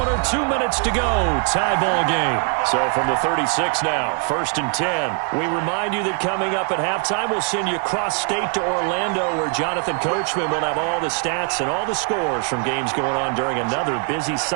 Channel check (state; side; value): quieter; left; 36.6 dB